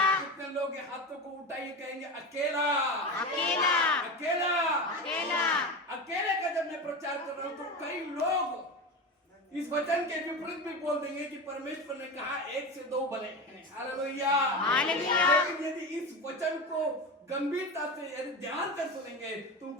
कितने लोग ये हाथों को उठाइए कहेंगे अकेला, अकेला, अकेला, अकेला। अकेले का जब मैं प्रचार कर रहा हूं तो कई लोग इस वचन के विपरीत भी बोल देंगे कि परमेश्वर ने कहा 1 से 2 बने हैं। Hallelujah, hallelujah. लेकिन यदि इस वचन को गंभीरता से यदि ध्यान से सुनेंगे तो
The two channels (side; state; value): both; normal; correlation 0.23